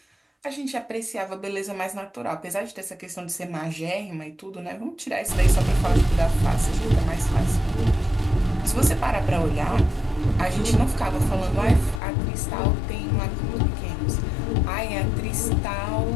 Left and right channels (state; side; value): drops out; right; at 12.0 s